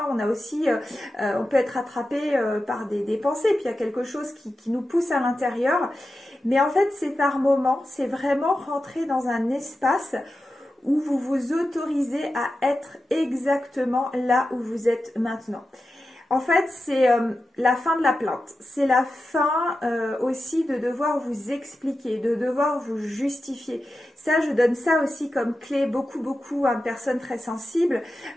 On a aussi, on peut être attrapé par des pensées. Puis il y a quelque chose qui nous pousse à l'intérieur. Mais en fait, c'est par moments, c'est vraiment rentrer dans un espace où vous vous autorisez à être exactement là où vous êtes maintenant. En fait, c'est la fin de la plainte. C'est la fin aussi de devoir vous expliquer, de devoir vous justifier. Ça, je donne ça aussi comme clé beaucoup à une personne très sensible.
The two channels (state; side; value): normal; both; correlation 0.92